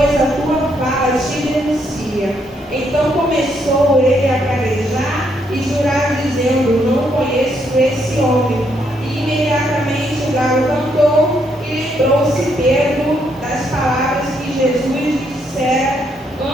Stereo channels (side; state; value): both; normal; correlation 0.74